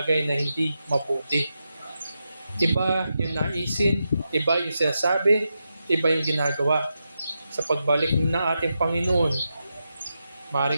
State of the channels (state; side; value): inverted; both; correlation -0.88